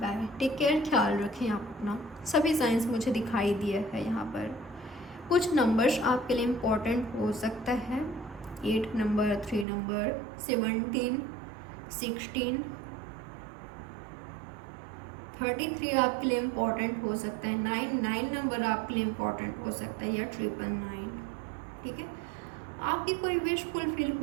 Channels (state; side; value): drops out; left; at 9.7 s